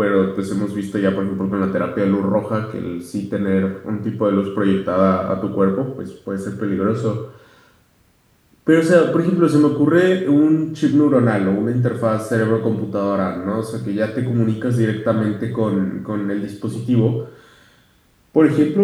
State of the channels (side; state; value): both; identical; correlation 1.00